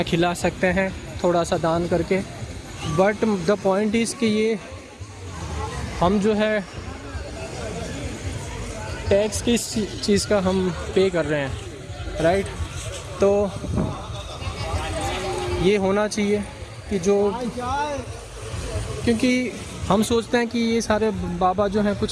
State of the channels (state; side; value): identical; both; correlation 1.00